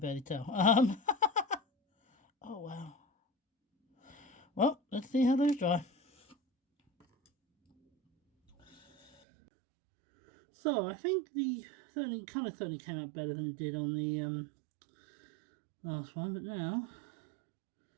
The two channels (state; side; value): drops out; left; at 9.1 s